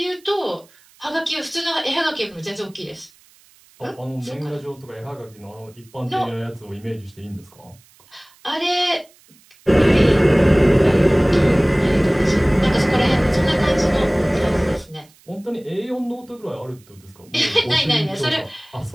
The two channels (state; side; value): noise; right; hiss, 29 dB below the sound